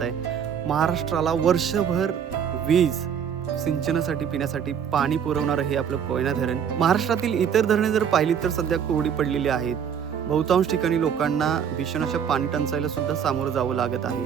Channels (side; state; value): left; quieter; 8.0 dB